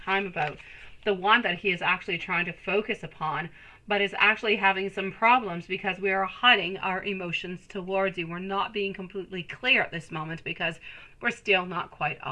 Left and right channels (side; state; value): both; identical; correlation 1.00